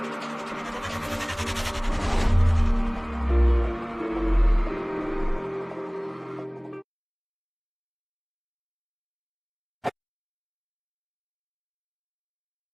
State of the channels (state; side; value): identical; both; correlation 1.00